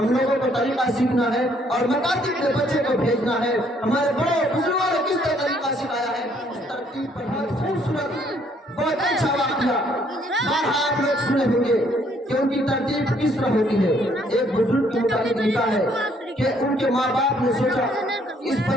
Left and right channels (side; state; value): both; normal; correlation 0.66